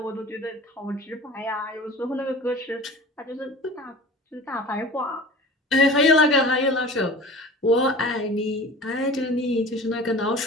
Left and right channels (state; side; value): normal; both; correlation 0.39